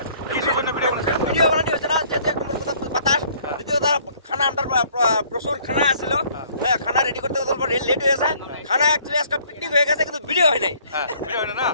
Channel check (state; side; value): inverted; both; correlation -0.59